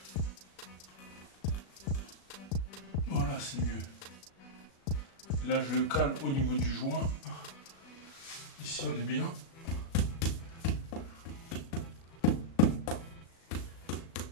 Voilà, c'est mieux. Là, je le cale au niveau du joint. Ici, on est bien.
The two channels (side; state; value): right; late; 36 ms